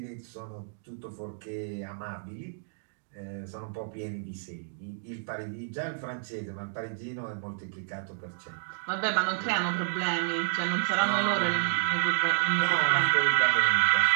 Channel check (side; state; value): left; silent; digital silence